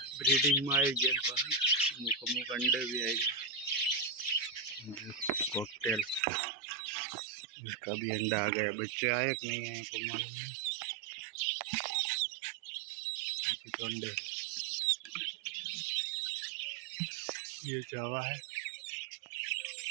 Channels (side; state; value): left; drops out; at 6.2 s